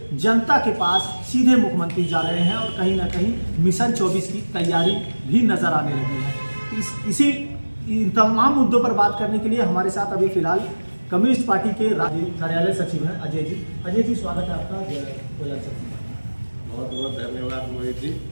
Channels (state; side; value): inverted; both; correlation -1.00